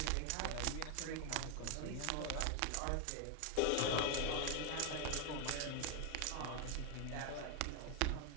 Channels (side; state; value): both; different; correlation 0.00